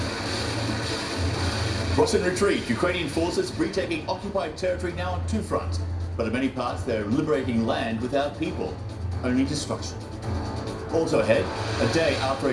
Russian retreat. Ukrainian forces retaking occupied territory now on two fronts. But in many parts, they're liberating land without people. Only destruction. Also ahead, a day after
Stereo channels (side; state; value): both; identical; correlation 1.00